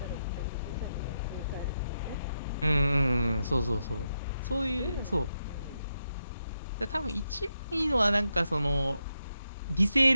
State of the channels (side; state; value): both; inverted; correlation -0.85